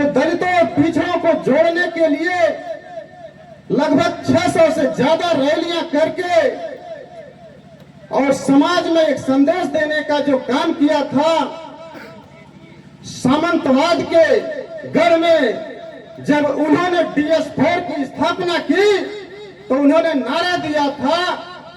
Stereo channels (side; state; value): both; identical; correlation 1.00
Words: दलितों और पिछड़ों को जोड़ने के लिए लगभग 600 से ज्यादा रैलियां करके और समाज में एक संदेश देने का जो काम किया था, सामंतवाद के गढ़ में जब उन्होंने DS4 की स्थापना की तो उन्होंने नारा दिया था